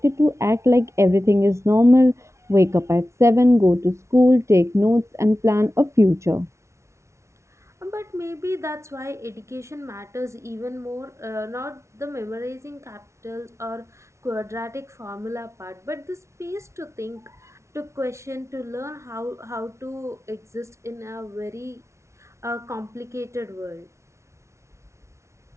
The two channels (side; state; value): left; late; 0.13 ms